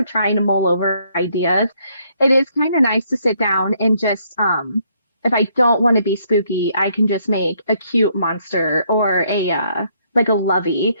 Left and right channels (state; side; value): inverted; both; correlation -0.70